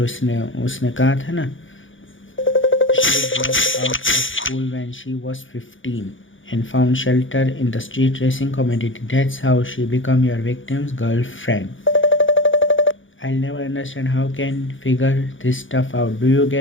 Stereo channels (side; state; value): right; late; 0.57 ms